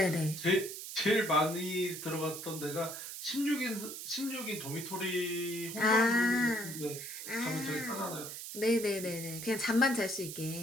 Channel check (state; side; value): noise; right; hiss, 8 dB below the sound